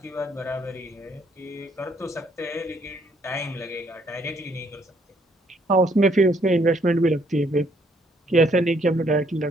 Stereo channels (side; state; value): both; normal; correlation 0.68